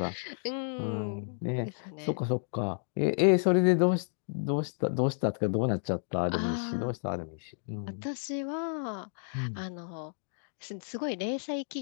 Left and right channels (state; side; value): silent; right; digital silence